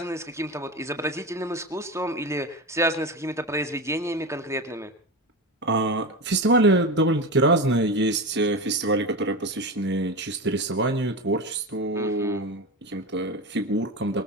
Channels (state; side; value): normal; both; correlation 0.22